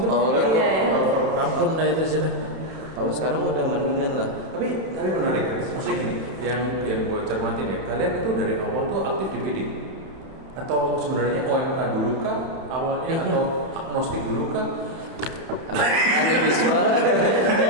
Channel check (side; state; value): left; late; 31 ms